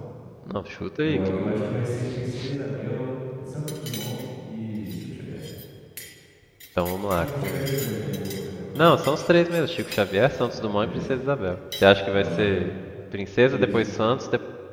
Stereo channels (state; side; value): identical; both; correlation 1.00